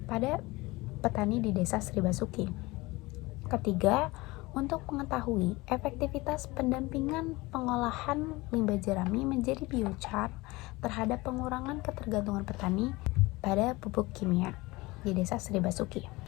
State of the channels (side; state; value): right; quieter; 21.8 dB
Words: pada petani di Desa Sri Basuki. Ketiga, untuk mengetahui efektivitas pendampingan pengolahan limbah jerami menjadi biochar terhadap pengurangan ketergantungan petani pada pupuk kimia di Desa Sri Basuki.